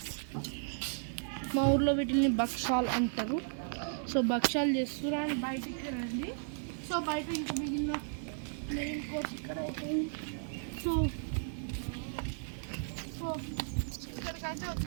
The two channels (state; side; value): silent; left; digital silence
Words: మా ఊర్లో వీటిని భక్షాలు అంటారు. సో భక్షాలు చేస్తున్నారు అండ్ బయటికి రండి. సో బయట ఇంకా మిగిలిన మెయిన్ కోర్స్ ఇక్కడ అయిపోయింది. సో ఇక్కడికైతే